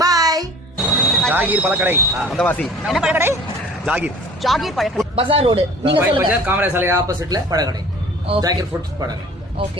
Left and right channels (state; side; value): normal; both; correlation 0.47